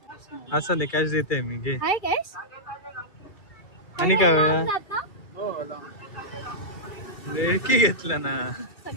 असं नाही कॅश देते मी घे. हाय कॅश. आणि काय होया जात ना? ढेकी घेतला ना.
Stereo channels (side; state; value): right; late; 2.7 ms